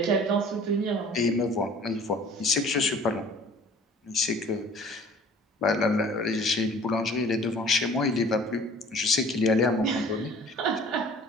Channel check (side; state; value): both; normal; correlation 0.49